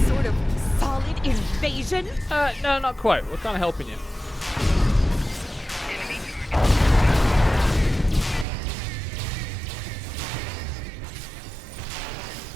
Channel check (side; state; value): left; drops out; at 8.5 s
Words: sort of solid invasion? No, not quite. We're kind of helping you.